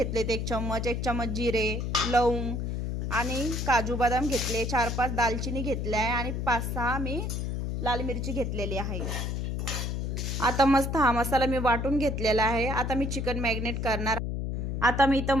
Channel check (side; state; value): left; noise; hum, 2 dB below the sound